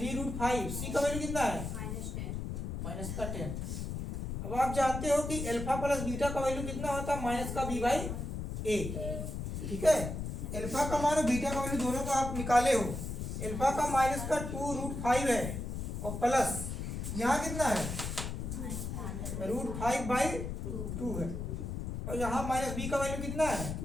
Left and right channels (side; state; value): left; noise; rumble, 5 dB below the sound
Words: c का वैल्यू कितना है -10। अब आप जानते हो कि अल्फा प्लस बीटा का वैल्यू कितना होता है -b/a, ठीक है। अल्फा का मान और बीटा का वैल्यू दोनों को आप निकाले हो। अल्फा का -2√5 है और प्लस यहाँ कितना है √5/2 है, और यहाँ -b का वैल्यू कितना है